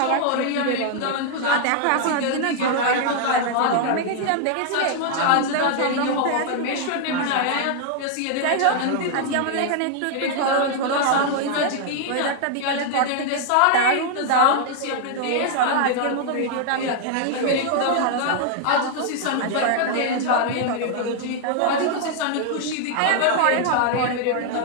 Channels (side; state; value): both; different; correlation 0.00